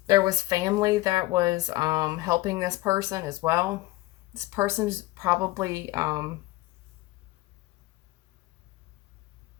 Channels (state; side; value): quieter; right; 19.0 dB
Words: There was family that was helping this person as well. This person's probably, I